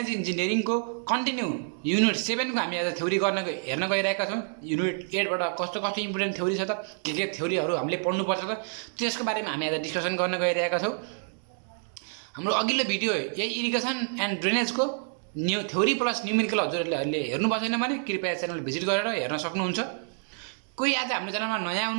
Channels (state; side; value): silent; left; 59 dB below the other